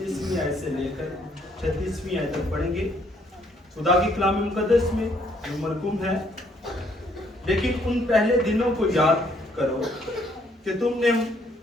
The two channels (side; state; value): both; normal; correlation 0.67